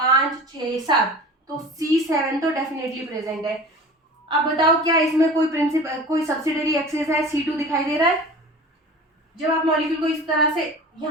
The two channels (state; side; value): normal; both; correlation 0.38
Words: 6 7, तो C7 तो डेफिनेटली प्रेजेंट है। अब बताओ क्या इसमें कोई प्रिंसिपल, कोई सब्सिडरी एक्सिस है, C2 दिखाई दे रहा है। जब आप मॉलिक्यूल को इस तरह से,